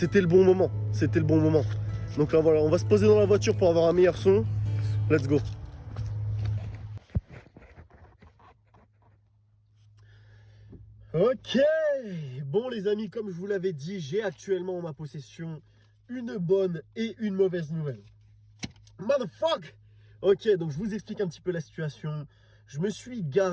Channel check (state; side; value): identical; both; correlation 1.00